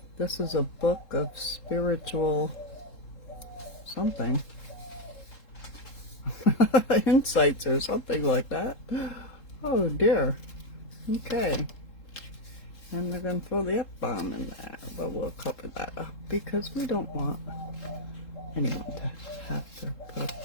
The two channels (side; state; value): right; late; 3.7 ms